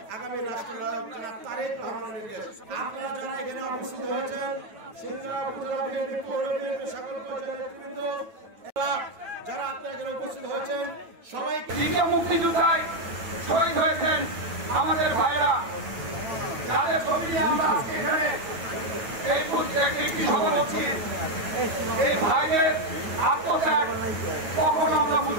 আগামী রাষ্ট্রনায়ক জনাব তারেক রহমানের নির্দেশ। আপনারা যারা এখানে উপস্থিত হয়েছেন সিংড়া উপজেলা বিএনপি পৌর বিএনপি সকল পর্যায়ের নেতৃবৃন্দ যারা আপনারা এখানে উপস্থিত হয়েছেন সবাইকে মুক্তিযোদ্ধায় শহীদ হয়েছেন আমাদের ভাইরা, যাদের ছবি নিয়ে আমরা আজকে এখানে একটি সভা করছি। এই ভাইদের আত্মত্যাগ কখনো আমরা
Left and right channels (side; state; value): left; late; 8.9 ms